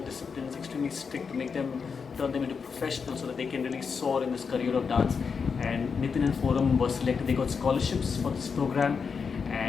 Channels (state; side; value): quieter; right; 5.7 dB